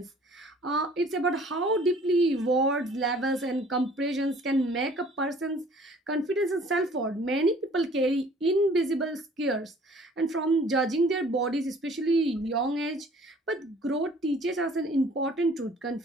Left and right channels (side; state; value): both; normal; correlation 0.53